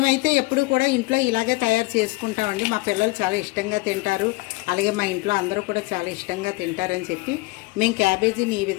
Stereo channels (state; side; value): quieter; right; 22.7 dB